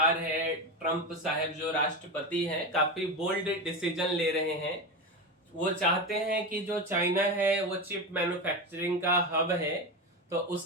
है, ट्रंप साहब जो राष्ट्रपति हैं, काफी बोल्ड डिसीजन ले रहे हैं। वो चाहते हैं कि जो चाइना है वो चिप मैन्युफैक्चरिंग का हब है, तो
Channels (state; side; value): normal; both; correlation 0.19